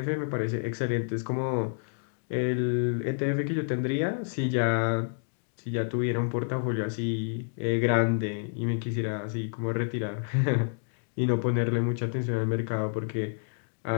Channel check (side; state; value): right; silent; digital silence